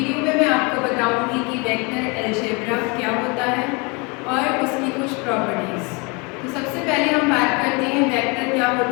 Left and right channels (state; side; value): quieter; right; 29.7 dB